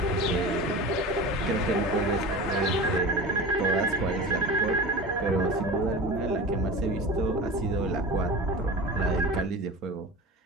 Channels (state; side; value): normal; both; correlation 0.32